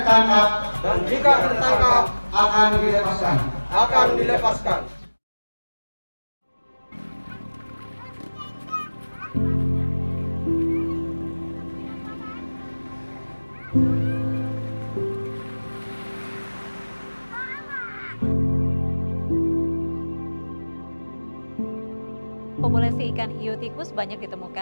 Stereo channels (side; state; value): both; inverted; correlation -1.00